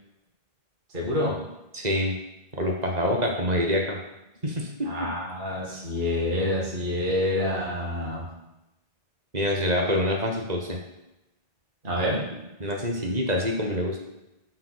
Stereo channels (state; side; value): late; left; 2.0 ms